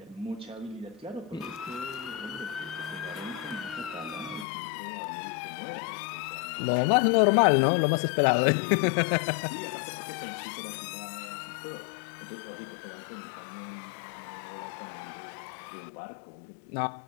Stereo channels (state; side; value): drops out; right; at 4.5 s